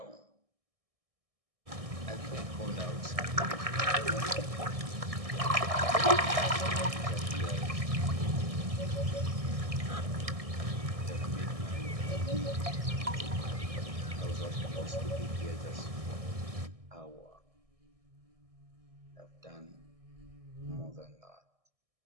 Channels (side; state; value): left; late; 1.6 ms